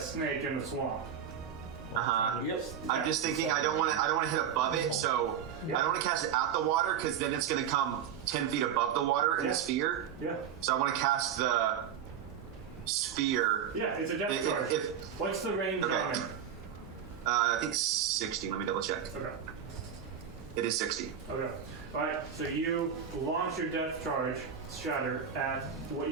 in the swamp. Yep. I'm just thinking I don't want to hit above it, so I don't want to cast it at the water because then it's going to come 10 feet above the water in the sphere. Yeah. So I want to cast the sphere. Yeah, it's a death charge. What's the range on it? I think 60. Let me double check. Okay. It is 60. Okay. Alright, so you launch your death charge, Shatter, at what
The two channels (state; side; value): quieter; left; 8.3 dB